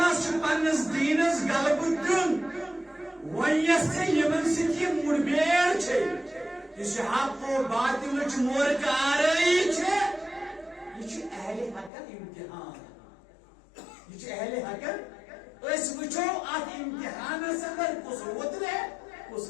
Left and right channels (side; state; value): right; drops out; at 11.9 s